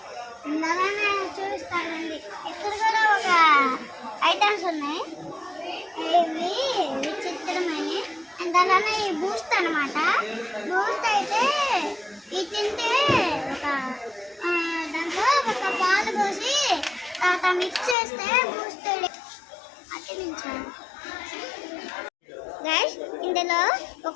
అలానే చూపిస్తానండి. ఇక్కడ కూడా ఒక ఐటమ్స్ ఉన్నాయి, ఇవి విచిత్రమైన. అండ్ అలానే ఈ బూస్ట్ అనమాట. బూస్ట్ అయితే ఇది తింటే దాంట్లో ఒక పాలు పోసి తర్వాత మిక్స్ చేస్తే బూస్ట్ అతికించాను. గైస్, ఇందులో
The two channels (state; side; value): drops out; right; at 17.9 s